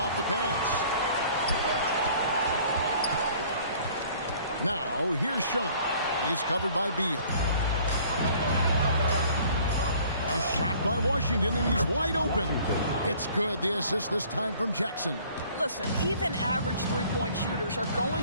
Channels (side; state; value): both; inverted; correlation -0.54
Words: the pass. Now, here's Sean. He's covered by Beal. A shot by Washington, and he's wide open. It's good. The assist this time from Jackson. Listen, even average three-point shooters are